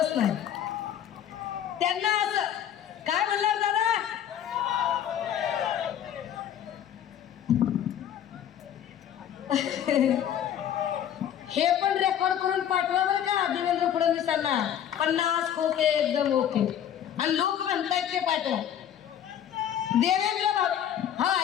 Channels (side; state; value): right; quieter; 10.0 dB